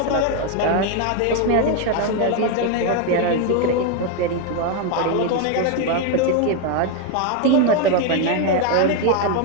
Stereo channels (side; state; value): both; different; correlation 0.01